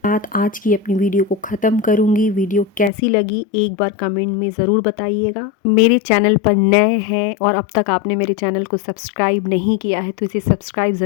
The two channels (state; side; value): drops out; right; at 2.9 s